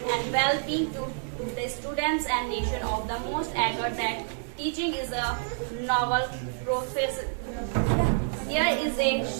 and well-being to the students and nation of the most agree that teaching is a novel profession. There is a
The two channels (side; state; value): left; silent; digital silence